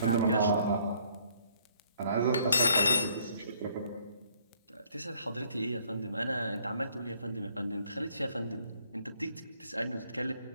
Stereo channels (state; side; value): inverted; both; correlation -0.64